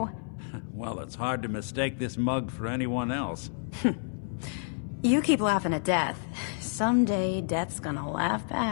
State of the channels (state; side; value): silent; right; 58 dB below the other